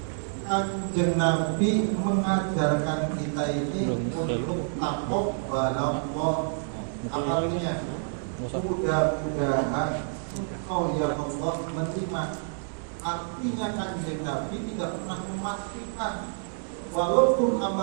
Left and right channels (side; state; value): left; silent; digital silence